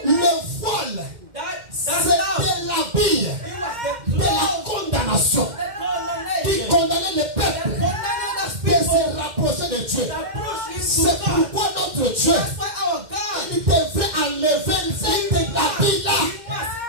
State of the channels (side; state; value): left; late; 2.1 ms